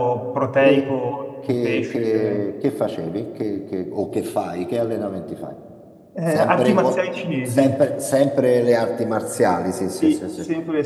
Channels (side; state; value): both; identical; correlation 1.00